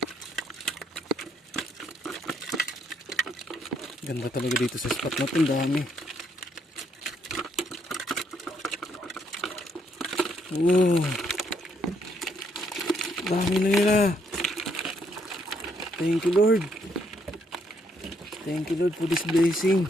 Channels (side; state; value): both; normal; correlation 0.72